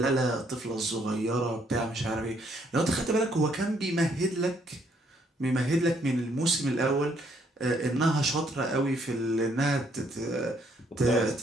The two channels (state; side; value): normal; both; correlation 0.69